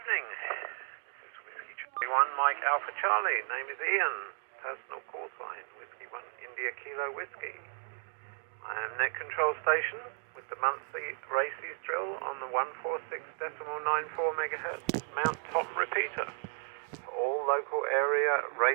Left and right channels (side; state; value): left; silent; 55 dB below the other